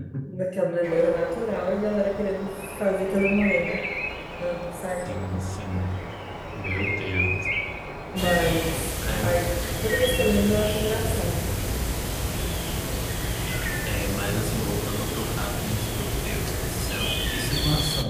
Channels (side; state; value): both; identical; correlation 1.00